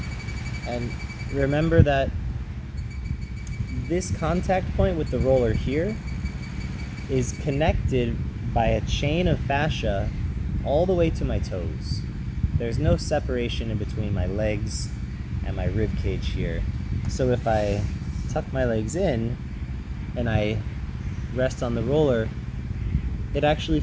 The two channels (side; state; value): both; identical; correlation 1.00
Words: And remember that this contact point with the roller here is connected by a chain of fascia all the way to my toes. There's no separation in between my legs and my rib cage here. So if I tuck my legs in and I rest on the roller, it actually